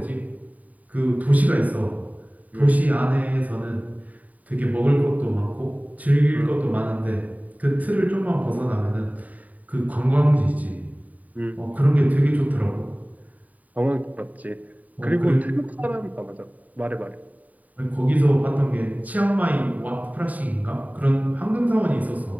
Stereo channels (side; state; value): left; late; 0.073 ms